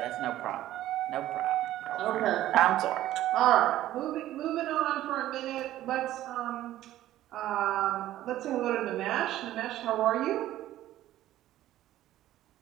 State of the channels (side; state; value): left; quieter; 13.9 dB